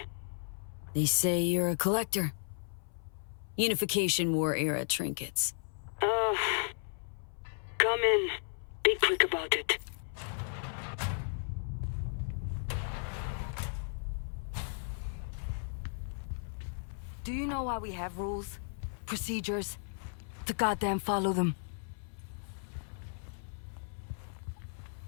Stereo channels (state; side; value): silent; right; 55 dB below the other